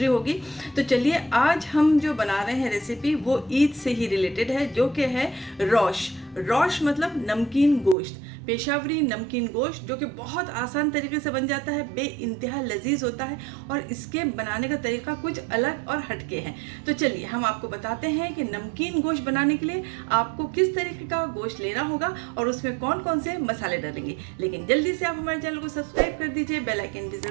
होगी। तो चलिए आज हम जो बना रहे हैं रेसिपी वो ईद से ही रिलेटेड है, जो कि है रोश। रोश मतलब नमकीन गोश्त, पेशावरी नमकीन गोश्त, जो कि बहुत आसान तरीके से बन जाता है, बेइंतहा लजीज होता है और इसके बनाने का तरीका कुछ अलग और हटके है। तो चलिए हम आपको बताते हैं कि नमकीन गोश्त बनाने के लिए आपको किस तरीके का गोश्त लेना होगा और उसमें कौन कौन से मसाले डालेंगे। लेकिन जल्दी से आप हमारे चैनल को सब्सक्राइब कर दीजिए, बेल आइकन भी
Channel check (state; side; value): drops out; left; at 8.0 s